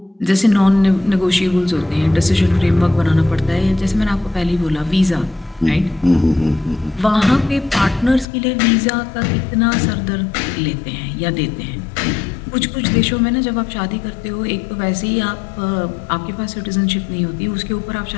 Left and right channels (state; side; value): drops out; right; at 8.2 s